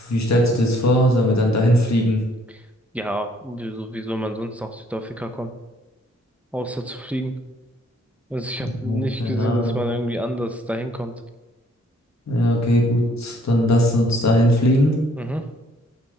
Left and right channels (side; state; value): both; normal; correlation 0.64